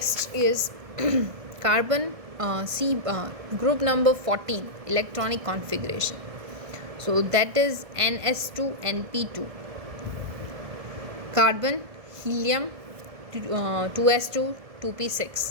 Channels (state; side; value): late; left; 1.7 ms